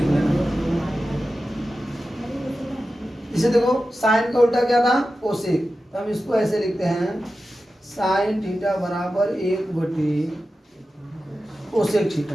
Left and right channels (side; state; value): both; normal; correlation 0.93